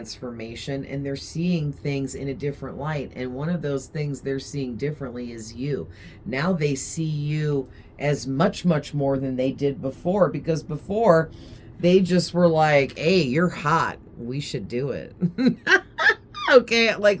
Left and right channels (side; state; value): both; identical; correlation 1.00